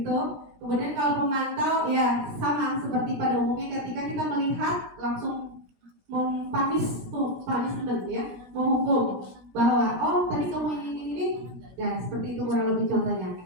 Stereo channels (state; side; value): late; left; 16 ms